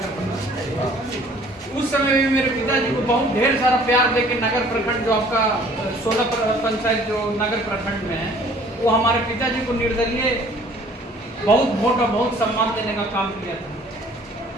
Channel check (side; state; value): both; normal; correlation 0.54